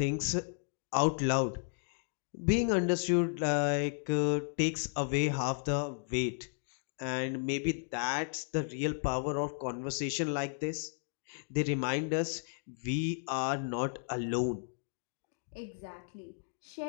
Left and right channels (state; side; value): silent; right; digital silence